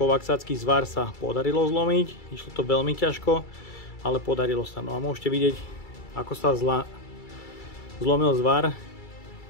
zvar sa podarilo zlomiť, išlo to veľmi ťažko, ale podarilo sa. No a môžete vidieť, ako sa zlomil zvar,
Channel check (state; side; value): late; right; 2.3 ms